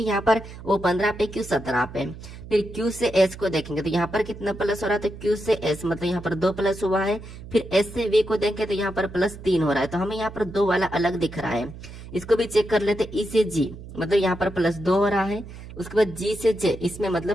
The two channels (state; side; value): noise; right; hum, 14 dB below the sound